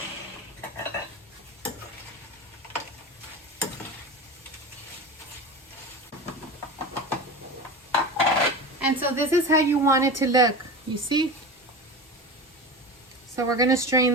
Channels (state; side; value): normal; both; correlation 0.28